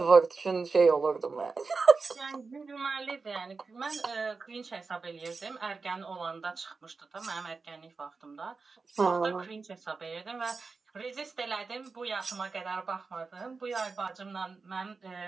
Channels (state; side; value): quieter; left; 4.4 dB